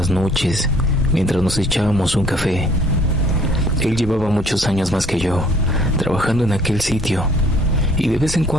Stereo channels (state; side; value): normal; both; correlation 0.58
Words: noches mientras nos echábamos un café. Él llevaba muchos años más que yo trabajando en aquel sitio, y de vez en